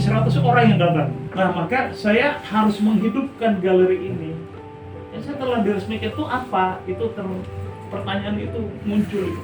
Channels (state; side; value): identical; both; correlation 1.00